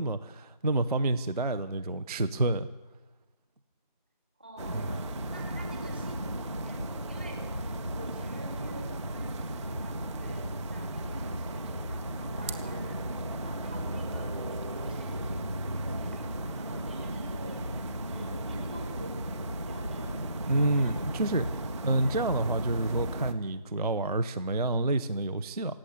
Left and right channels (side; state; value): both; inverted; correlation -0.66